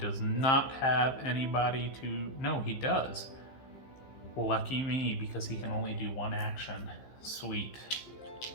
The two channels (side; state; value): right; late; 15 ms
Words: not have anybody to. No, he does. Lucky me, because he can only do 1 action. Sweet.